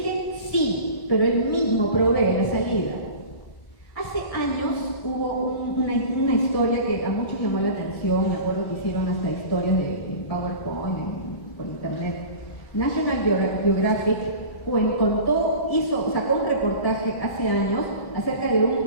sí, pero Él mismo provee la salida. Hace años hubo una historia que a muchos llamó la atención. Me acuerdo que hicieron hasta historias de PowerPoint por internet. National Geographic sacó un reportaje hace años acerca de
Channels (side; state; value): right; late; 1.7 ms